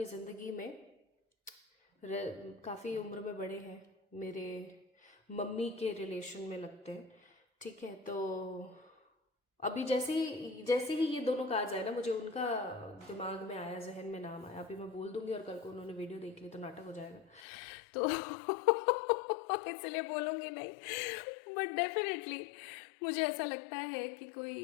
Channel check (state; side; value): drops out; right; at 17.4 s